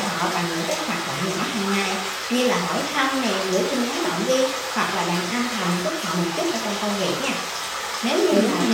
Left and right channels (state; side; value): identical; both; correlation 1.00